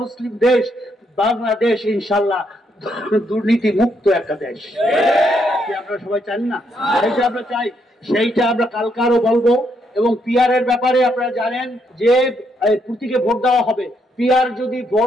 মুসলিম দেশ বাংলাদেশ, ইনশাল্লাহ দুর্নীতি মুক্ত একটা দেশ। আপনারা সবাই চান না? সেইটা আমরা চাই, সেইটা আমরা কালকারও বলবো। এবং পিআর এর ব্যাপারে আপনারা জানেন যে প্রতীকে ভোট দেওয়া হবে। পিআর যদি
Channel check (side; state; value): both; normal; correlation 0.75